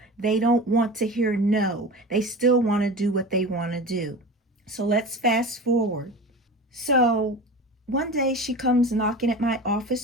they don't want to hear no. They still want to do what they want to do. So let's fast forward. So one day she comes knocking at my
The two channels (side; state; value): both; normal; correlation 0.32